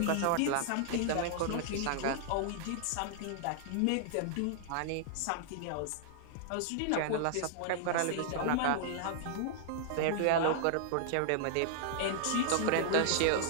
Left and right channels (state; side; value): different; both; correlation -0.01